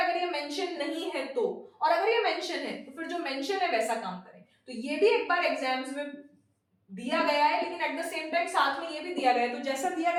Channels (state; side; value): identical; both; correlation 1.00